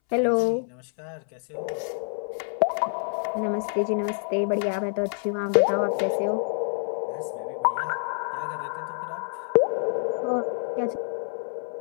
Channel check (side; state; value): right; silent; 60 dB below the other